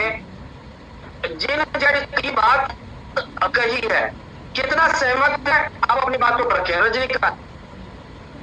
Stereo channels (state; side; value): identical; both; correlation 1.00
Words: जिन जज की बात कही है, कितना सहमत है आप अपनी बातों पर रखें। रजनीकांत,